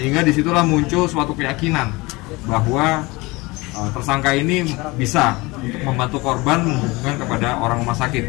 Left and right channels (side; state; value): right; quieter; 23.3 dB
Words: disitulah muncul suatu keyakinan bahwa tersangka ini bisa untuk membantu korban menghubungkan kepada orang rumah